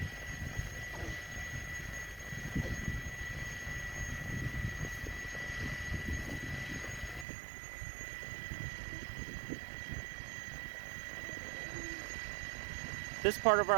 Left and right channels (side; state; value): left; drops out; at 7.2 s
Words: This part of